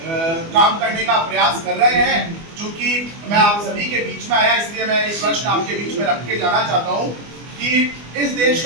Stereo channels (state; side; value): late; left; 24 ms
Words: काम करने का प्रयास कर रहे हैं। चूंकि मैं आप सभी के बीच में आया इसलिए मैं इस प्रश्न आपके बीच में रख के जाना चाहता हूं कि इस देश